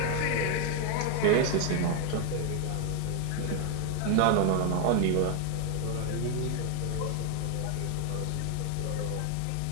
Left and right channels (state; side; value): different; both; correlation 0.00